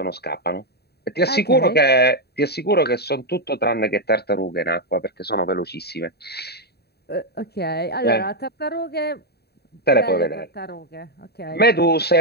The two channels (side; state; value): right; late; 0.47 ms